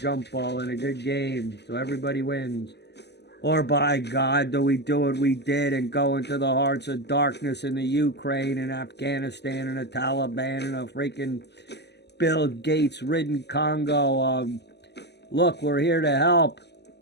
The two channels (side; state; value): right; late; 0.50 ms